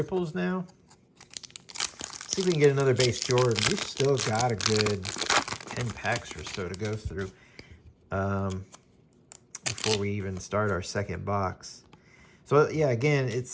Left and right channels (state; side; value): identical; both; correlation 1.00